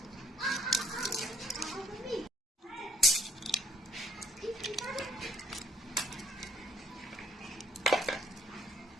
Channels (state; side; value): normal; both; correlation 0.63